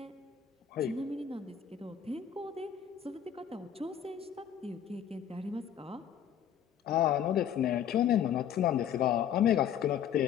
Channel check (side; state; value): right; quieter; 9.3 dB